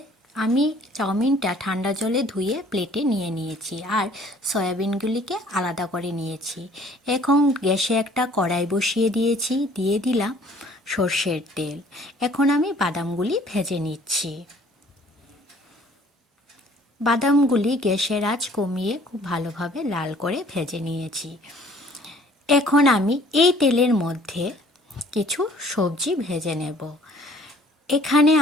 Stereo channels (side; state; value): both; normal; correlation 0.56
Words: আমি চাউমিনটা ঠান্ডা জলে ধুয়ে প্লেটে নিয়ে নিয়েছি আর সয়াবিনগুলিকে আলাদা করে নিয়েছি। এখন গ্যাসে একটা কড়াই বসিয়ে দিয়েছি, দিয়ে দিলাম সর্ষের তেল। এখন আমি বাদামগুলি ভেজে নিচ্ছি। বাদামগুলি গ্যাসের আঁচ কমিয়ে খুব ভালোভাবে লাল করে ভেজে নিয়েছি। এখন আমি এই তেলের মধ্যে কিছু সবজি ভেজে নেব। এখানে